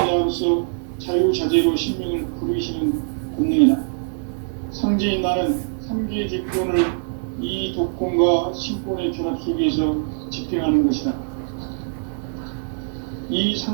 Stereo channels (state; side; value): silent; left; 64 dB below the other